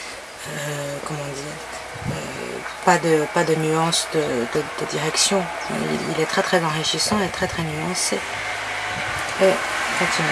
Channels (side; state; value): both; identical; correlation 1.00